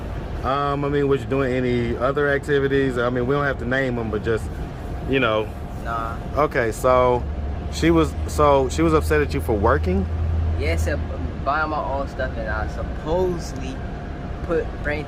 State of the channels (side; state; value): both; identical; correlation 1.00